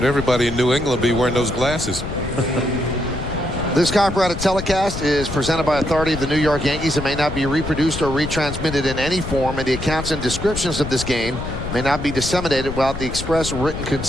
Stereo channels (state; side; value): noise; left; rumble, 7 dB below the sound